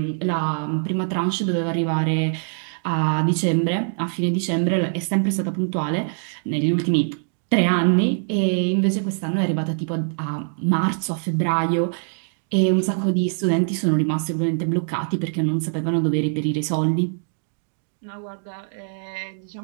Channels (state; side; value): silent; left; 63 dB below the other